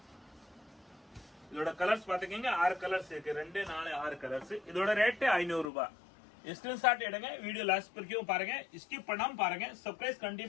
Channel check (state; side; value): drops out; right; at 5.7 s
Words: இதோட கலர்ஸ் பாத்துக்கீங்க, 6 கலர்ஸ் இருக்கு. 2 4 6 கலர்ஸ். இதோட ரேட் 500 ரூபாய். ஸ்கிரீன்ஷாட் எடுங்க. வீடியோ லாஸ்ட் வரைக்கும் பாருங்க, ஸ்கிப் பண்ணாம பாருங்க. சப்ஸ்கிரைப்